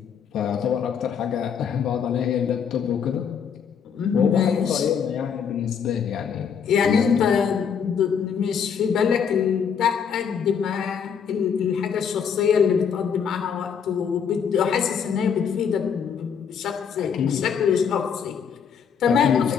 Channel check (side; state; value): right; quieter; 7.2 dB